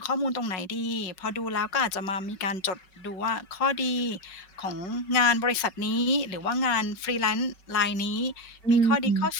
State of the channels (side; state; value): right; late; 5.4 ms